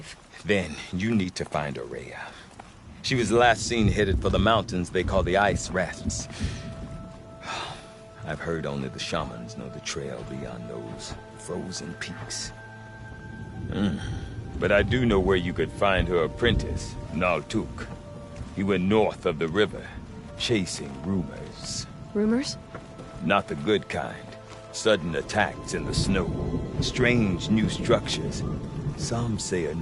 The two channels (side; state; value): both; identical; correlation 1.00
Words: Then you need to find Aurea. She was last seen headed for the mountains they call the Ice Rasps. I've heard only the shamans know the trail beyond those frozen peaks. But I do know where you could find her apprentice, Naltuk. He went north of the river, chasing rumors. Rumors? Not the good kind. Sudden attacks in the snow. Strange new structures. Some say a